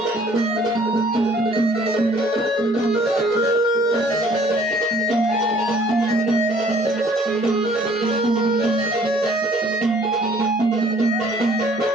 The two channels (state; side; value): normal; both; correlation 0.57